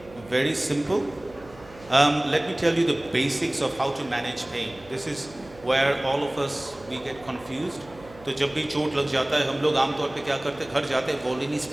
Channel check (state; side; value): noise; right; hum, 22 dB below the sound